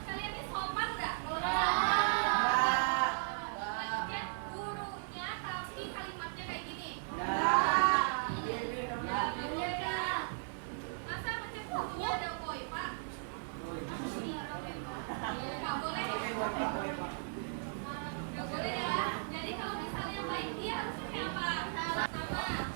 kalian ini sopan nggak? Kalau misalnya gurunya tapi kalimatnya kayak gini. Masa macam gurunya ada koi pak? Nggak boleh. Nggak boleh ya. Jadi kalau misalnya baik dia harusnya kayak apa? Sama.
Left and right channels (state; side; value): silent; left; 53 dB below the other